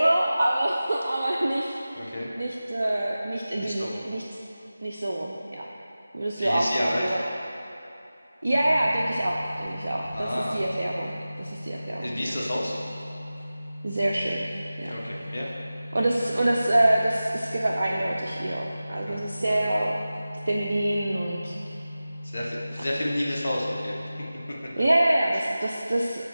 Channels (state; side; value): inverted; both; correlation -0.96